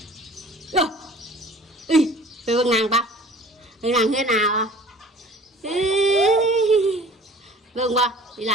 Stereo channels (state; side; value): normal; both; correlation 0.47